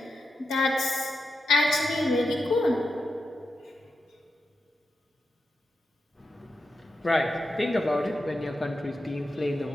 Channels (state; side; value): normal; both; correlation 0.88